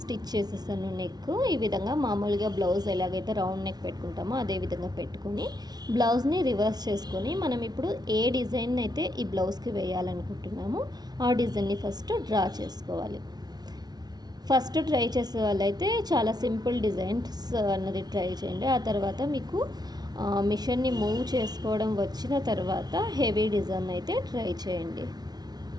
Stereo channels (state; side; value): late; left; 0.19 ms